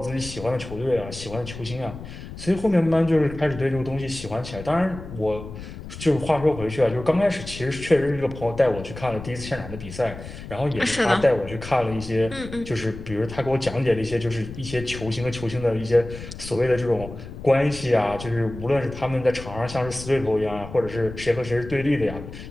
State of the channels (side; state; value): left; noise; rumble, 12 dB below the sound